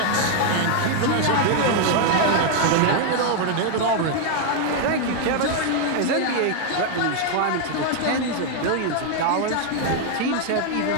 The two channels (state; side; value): different; both; correlation 0.00